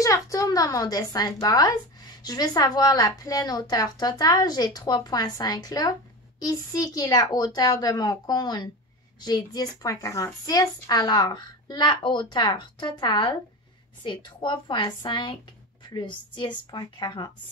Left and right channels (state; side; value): normal; both; correlation 0.26